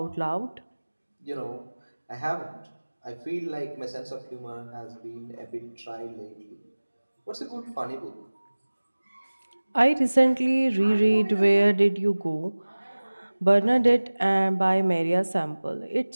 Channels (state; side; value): inverted; both; correlation -1.00